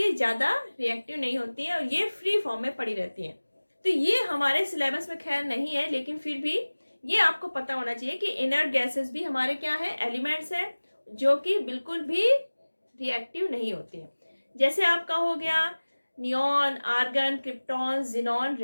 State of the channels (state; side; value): inverted; both; correlation -1.00